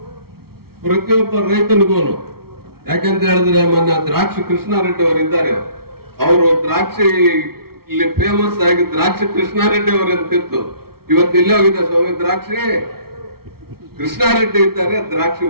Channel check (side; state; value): left; late; 0.94 ms